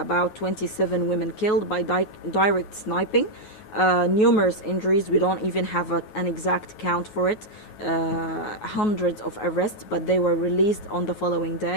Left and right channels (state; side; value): late; right; 9.4 ms